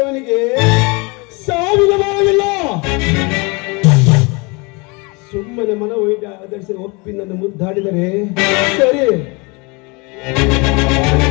ಸಾವಿನ ಭಾವವಿಲ್ಲ. ಸುಮ್ಮನೆ ಮನ ಒಯ್ದ ಆಧರಿಸಿ ಒಪ್ಪಿ ನನ್ನ ಮುದ್ದಾಡಿದರೆ ಸರಿ.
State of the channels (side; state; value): right; quieter; 28.4 dB